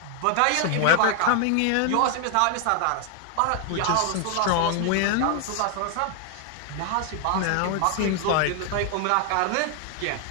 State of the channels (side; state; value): both; different; correlation 0.00